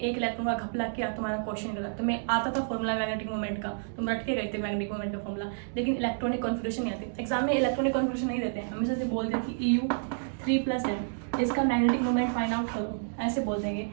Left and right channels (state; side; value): silent; left; digital silence